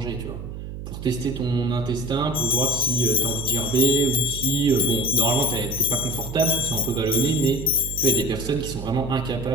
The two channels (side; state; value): right; noise; hum, 9 dB below the sound